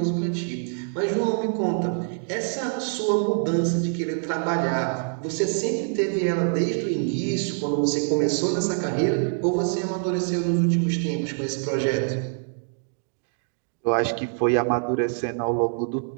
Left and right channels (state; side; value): silent; left; 57 dB below the other